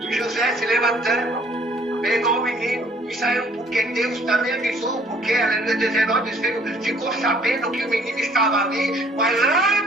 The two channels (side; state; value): both; normal; correlation 0.59